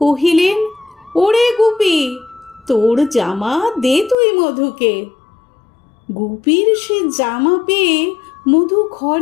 কহিলেন, ওরে গুপি, তোর জামা দে তুই মধুকে। গুপির সে জামা পেয়ে মধু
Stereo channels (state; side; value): drops out; right; at 4.2 s